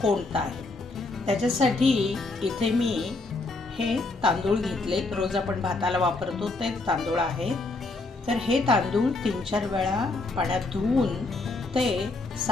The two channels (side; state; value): right; quieter; 3.3 dB